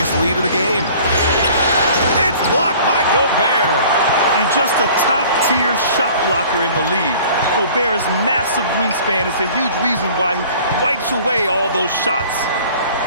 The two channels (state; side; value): inverted; both; correlation -0.49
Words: lead of the game. It's blocked by Gobert. And just a top-tier shot blocker in the league. Gobert's massive wingspan is a huge reason why he wipes away all those shots.